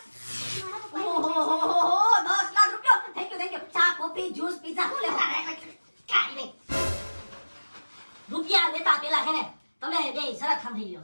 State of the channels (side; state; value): both; inverted; correlation -1.00